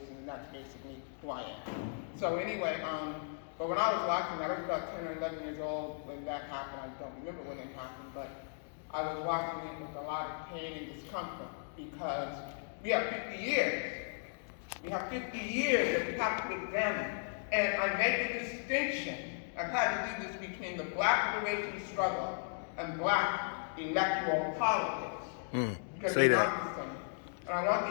and that's basically who I am. So anyway, but when I was watching that, I was about 10 or 11 years old when that happened. I don't remember when it happened, but I was watching it with a lot of pain and discomfort because we have 50 years. We have 50 years that we have to examine. And I make a distinction. I've had to do this between the black liberation struggle and black electoral politics. Because say they're that. not the same. And I want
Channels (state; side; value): silent; right; digital silence